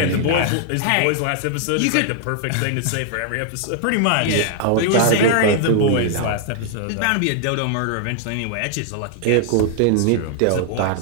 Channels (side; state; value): both; different; correlation 0.00